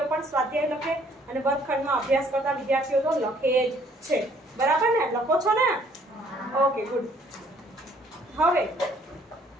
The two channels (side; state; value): both; normal; correlation 0.61